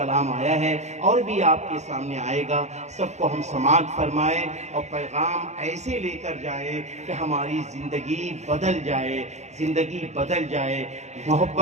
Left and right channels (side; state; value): left; late; 0.33 ms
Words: آیا ہے اور بھی آپ کے سامنے آئے گا، سب کو ہم سماعت فرمائیں اور پیغام ایسے لے کر جائیں کہ ہماری زندگی بدل جائے، زندگی بدل جائے۔